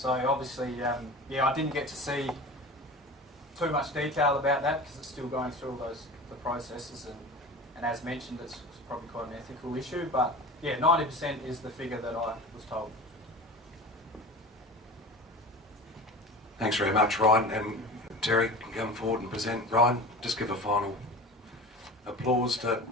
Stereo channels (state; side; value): normal; both; correlation 0.34